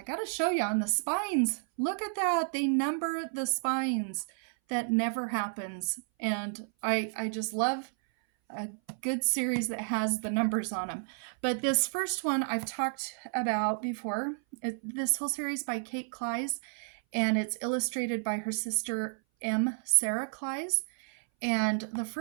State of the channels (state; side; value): silent; left; 57 dB below the other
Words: got to show you on the spines. Look at that. They number the spines. That never happens. And I just love a good series that has the numbers on them. But this first one I've talked about before. This whole series by Kate Klise, and it's illustrated by her sister Sarah Klise. And the